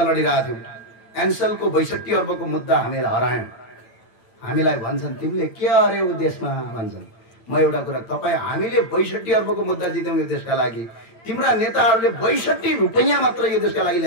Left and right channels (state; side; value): late; right; 8.9 ms